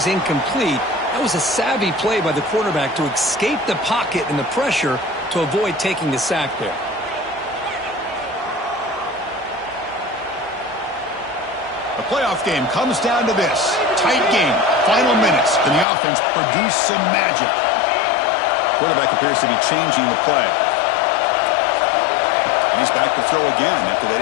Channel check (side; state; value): right; drops out; at 15.9 s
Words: incomplete, that was a savvy play by the quarterback to escape the pocket and the pressure to avoid taking the sack there. The playoff game comes down to this. Tight game. Final minutes. Can the offense produce some magic? Quarterback appears to be changing the play. And he's back to throw again after that